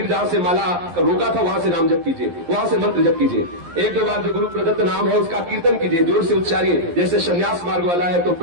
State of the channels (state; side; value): late; left; 11 ms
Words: जहां से माला रोका था वहां से नाम जप कीजिए, वहां से मंत्र जप कीजिए। 1-2 बार जो गुरु प्रदत्त नाम है उसका कीर्तन कीजिए, जोर से उच्चारिए। जैसे संन्यास मार्ग वाला है तो